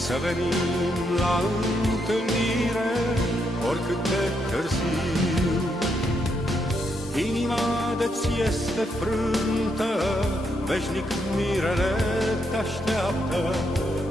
să venim la întâlnire, oricât de târziu. Inima de-ți este frântă, veșnic mirele te așteaptă,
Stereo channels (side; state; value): both; normal; correlation 0.78